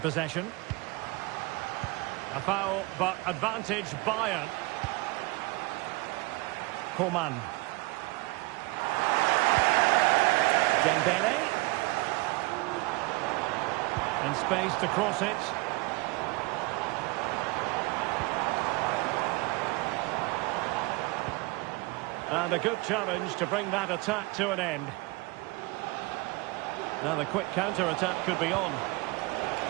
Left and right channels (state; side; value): quieter; left; 24.0 dB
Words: A foul, but advantage Bayern. Coman. Dembele. And space to cross it. And a good challenge to bring that attack to an end. Now the quick counter-attack could be on.